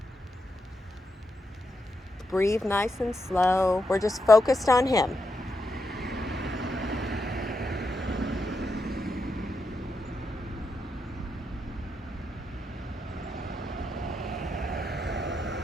Breathe nice and slow. We're just focused on him.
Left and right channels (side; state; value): both; normal; correlation 0.84